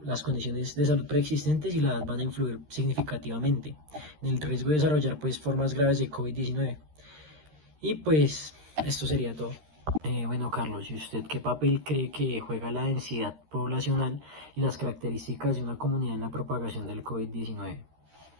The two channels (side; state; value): left; late; 13 ms